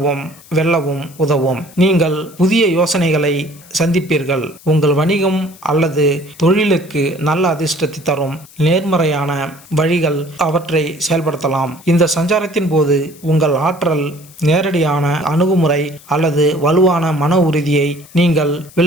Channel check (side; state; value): left; noise; hiss, 23 dB below the sound